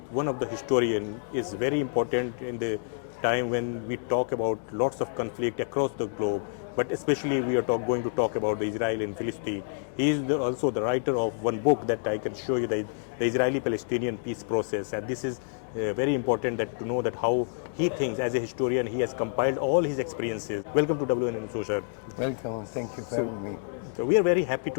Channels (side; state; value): right; silent; digital silence